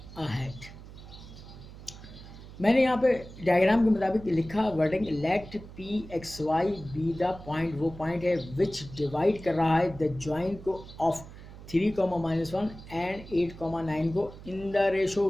ahead. मैंने यहाँ पे डायग्राम के मुताबिक लिखा wording, let pxy be the point, वो पॉइंट है विच डिवाइड कर रहा है द जॉइन को ऑफ 3, -1 एंड 8, 9 को इन द रेशो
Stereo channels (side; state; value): right; noise; hum, 16 dB below the sound